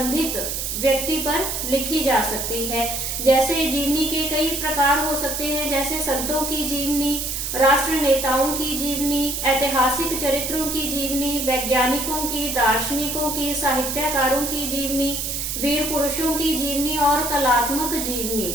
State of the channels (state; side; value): noise; right; hiss, 3 dB below the sound